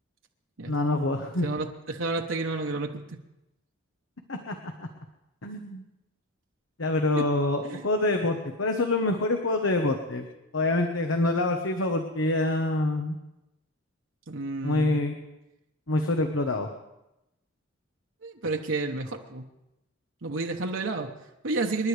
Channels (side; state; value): both; normal; correlation 0.23